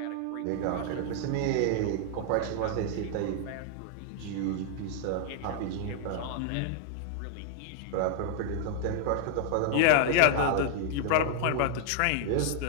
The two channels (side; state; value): both; different; correlation -0.01